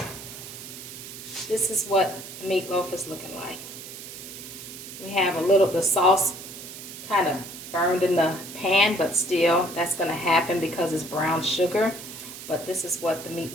this is what the meatloaf is looking like. We have a little, the sauce kind of burned in the pan, but still that's going to happen because it's brown sugar. But this is what the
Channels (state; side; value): noise; right; hiss, 12 dB below the sound